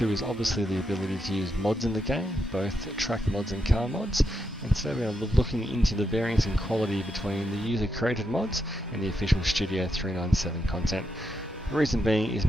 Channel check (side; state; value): both; normal; correlation 0.83